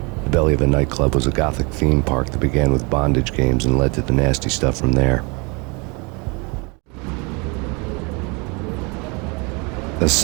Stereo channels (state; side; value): quieter; left; 30.3 dB